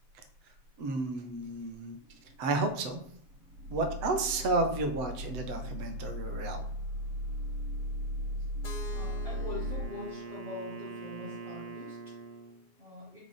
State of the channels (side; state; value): left; late; 7.8 ms